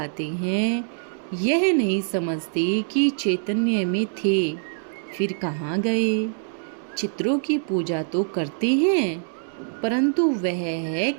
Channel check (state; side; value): silent; left; digital silence